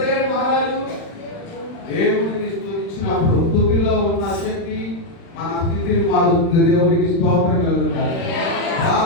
మహారాజు? దేవుడిని స్తుతించినప్పుడు. స్తుతిలో ఉన్న శక్తి మన స్థితిని మారుతుంది. దేవునికి స్తోత్రం కలుగుతారు.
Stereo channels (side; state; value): right; late; 35 ms